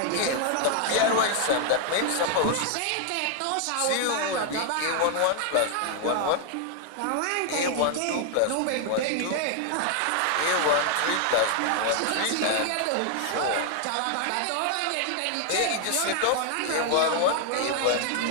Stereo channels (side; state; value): both; different; correlation 0.00